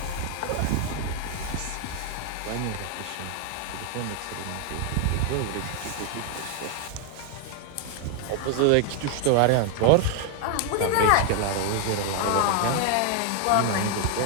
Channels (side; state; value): both; different; correlation 0.00